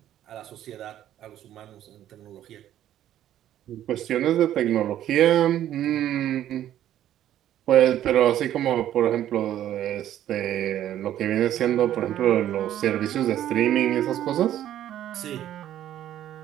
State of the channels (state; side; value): quieter; left; 11.8 dB